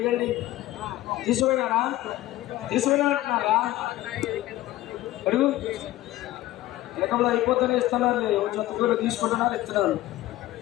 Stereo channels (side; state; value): right; quieter; 15.9 dB